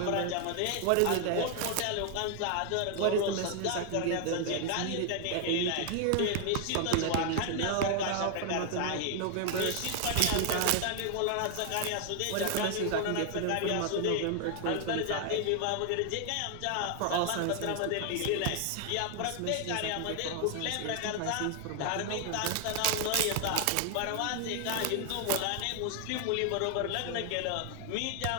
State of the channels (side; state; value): both; different; correlation 0.00